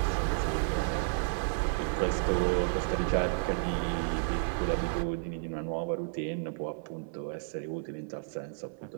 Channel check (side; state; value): left; silent; 56 dB below the other